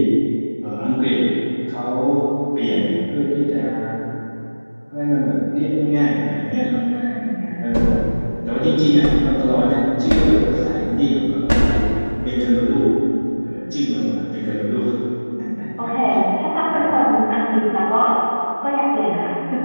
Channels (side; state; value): both; inverted; correlation -1.00